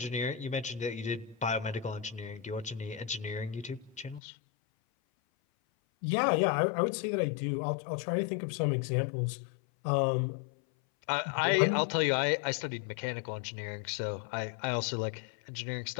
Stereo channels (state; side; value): drops out; right; at 4.2 s